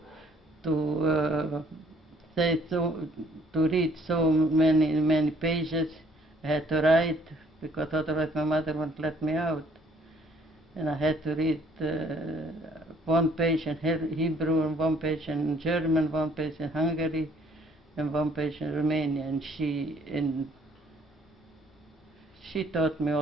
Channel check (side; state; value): both; normal; correlation 0.62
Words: say so, to read so many pages. I had to write because otherwise my mother wouldn't let me out. And I had to read one page in Hebrew and one page in German, one page in Hungary, and one page in Romania. And she taught me